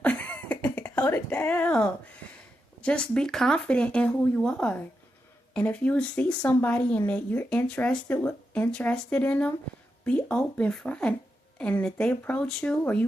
Hold it down. Just be confident in who you are. And if you see somebody and that you're interested in them, be open front. And if they approach you or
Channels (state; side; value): normal; both; correlation 0.86